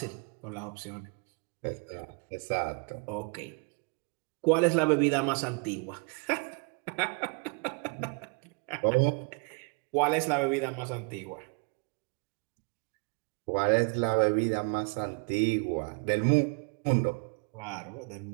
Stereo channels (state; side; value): quieter; left; 33.6 dB